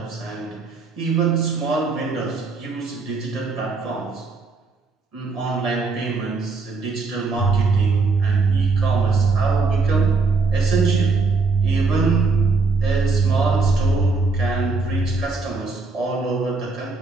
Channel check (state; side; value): quieter; left; 4.1 dB